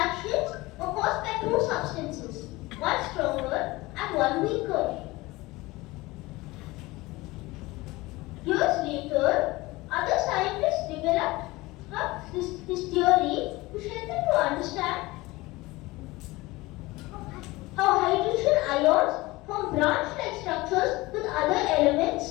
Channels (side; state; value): right; quieter; 20.9 dB